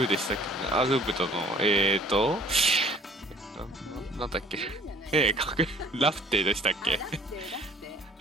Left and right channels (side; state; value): both; normal; correlation 0.53